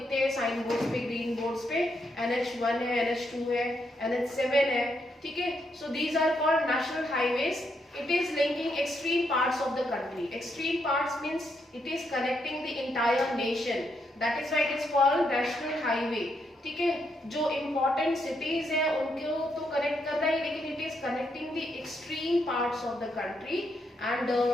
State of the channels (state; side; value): normal; both; correlation 0.78